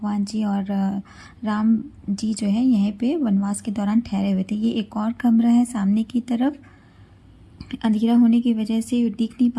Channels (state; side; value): identical; both; correlation 1.00